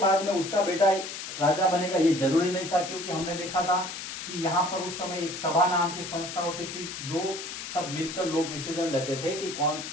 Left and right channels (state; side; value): noise; left; hiss, 8 dB below the sound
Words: में उसका बेटा राजा बनेगा ये जरूरी नहीं था, क्योंकि हमने देखा था कि यहाँ पर उस समय एक सभा नाम की संस्था होती थी, जो सब मिलकर लोग डिसीजन लेते थे कि कौन